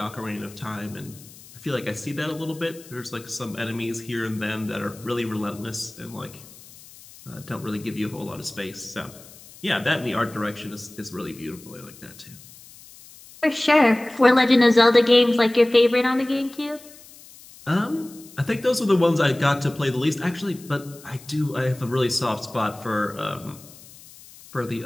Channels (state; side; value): noise; left; hiss, 21 dB below the sound